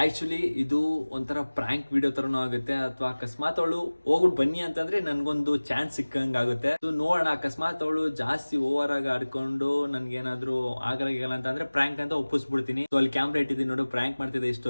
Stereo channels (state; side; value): inverted; both; correlation -1.00